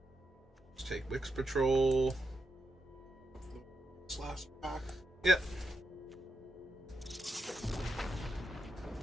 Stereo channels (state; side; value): normal; both; correlation 0.85